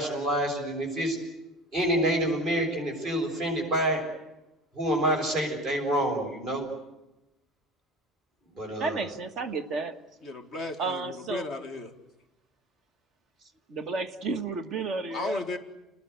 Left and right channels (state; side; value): normal; both; correlation 0.38